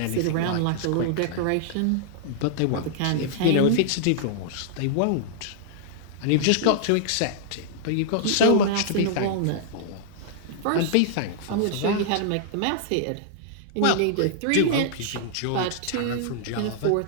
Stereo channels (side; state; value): both; different; correlation -0.01